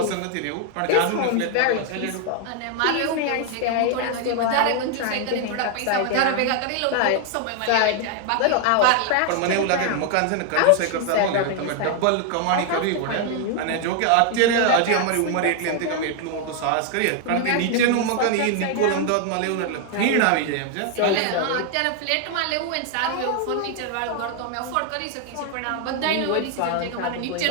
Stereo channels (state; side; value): different; both; correlation 0.00